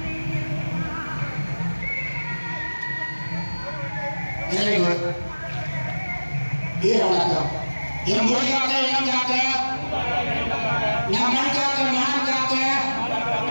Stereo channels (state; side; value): inverted; both; correlation -1.00